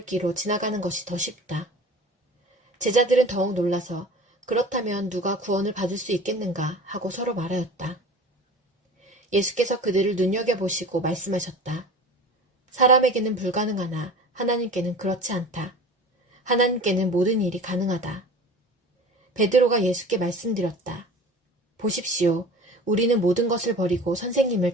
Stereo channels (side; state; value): both; normal; correlation 0.39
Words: 지나가는 것이 더 쉽다. 제자들은 더욱 놀라서 그렇다면 누가 구원을 받을 수 있겠는가 하고 서로 말하였다. 예수께서 그들을 눈여겨보시고 말씀하셨다. 사람에게는 불가능하나 하나님께는 그렇지 않다. 하나님께는 모든 일이 가능하다. 베드로가 예수께 말씀드렸다. 보십시오. 우리는 모든 것을 버리고 선생님을